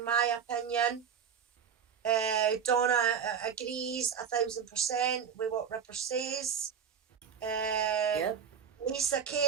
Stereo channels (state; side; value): quieter; left; 7.5 dB